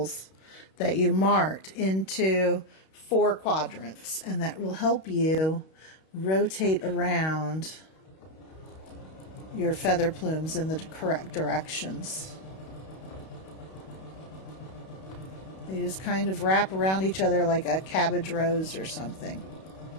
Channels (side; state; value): right; late; 31 ms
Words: that you marked into 4 quadrants, and that will help you rotate around your feather plumes in the correct directions. They just kind of wrap around each other like a cabbage rose or something.